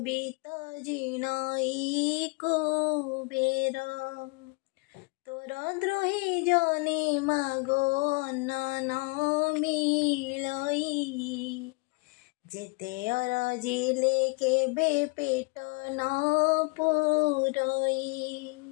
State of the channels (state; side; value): quieter; right; 28.9 dB